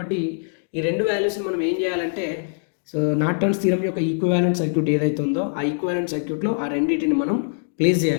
ఈ రెండు వాల్యూస్ని మనం ఏం చేయాలంటే సో నార్టన్స్ థీరం యొక్క ఈక్వివాలెంట్ సర్క్యూట్ ఏదైతే ఉందో ఆ ఈక్వివాలెంట్ సర్క్యూట్లో ఆ రెండింటిని మనం ప్లేస్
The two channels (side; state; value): right; silent; digital silence